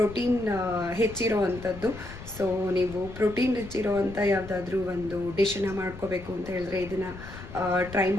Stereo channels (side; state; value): left; noise; rumble, 14 dB below the sound